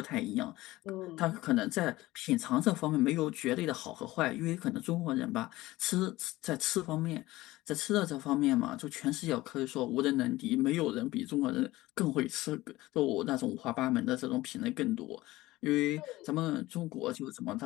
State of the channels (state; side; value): quieter; right; 18.1 dB